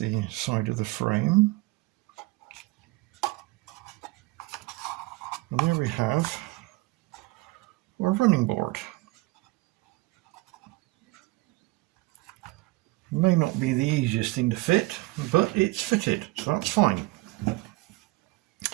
side of the frame. And there we have our running board. It may not be the easiest thing to fit, but it's fitted, so that's fine.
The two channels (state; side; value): quieter; left; 21.8 dB